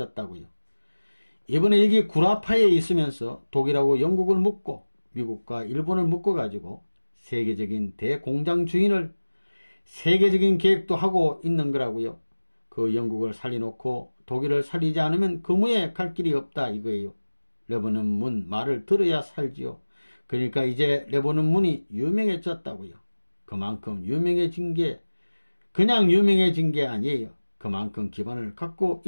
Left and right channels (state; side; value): inverted; both; correlation -1.00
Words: 이번에 여기 구라파에 있으면서 독일하고 영국을 묶고 미국과 일본을 묶어가지고 세계적인 대공장 주인을 세계적인 계획도 하고 있는 거라고요. 그 영국을 살려놓고 독일을 살리지 않으면 그무에 갈 길이 없다 이거예요. 레버논문 말을 들어야 살지요. 그러니까 이제 레버논문이 유명해졌다고요. 그만큼 유명해진 게 그냥 유명해진 게 아니에요. 그만큼 기반을 갖고